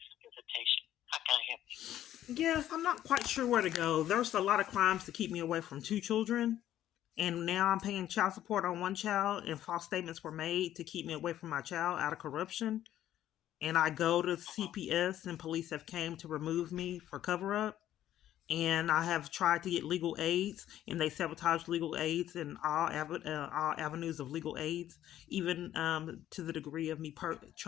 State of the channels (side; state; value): right; quieter; 12.2 dB